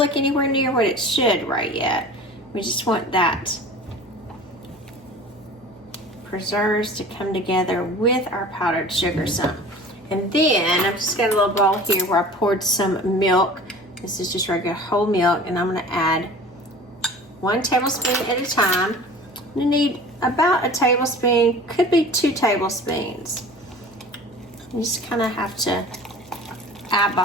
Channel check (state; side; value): normal; both; correlation 0.41